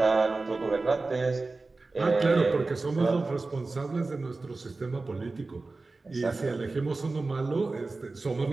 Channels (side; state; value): left; quieter; 3.6 dB